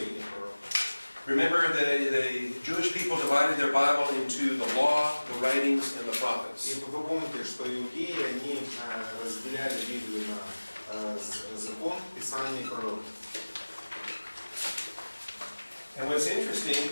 пророков. Remember, the Jewish people divided their Bible into the law, the writings, and the И prophets. вы помните, что иудеи, они разделяли Библию на закон, Писание и пророки. And what's interesting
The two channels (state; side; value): inverted; both; correlation -1.00